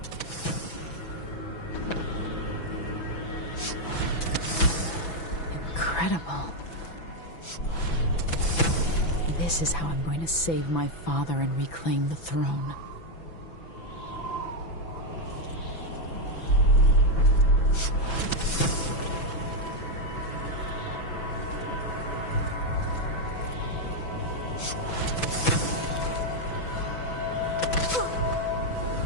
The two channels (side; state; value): right; late; 6.0 ms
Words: Incredible. This is how I'm going to save my father and reclaim the throne.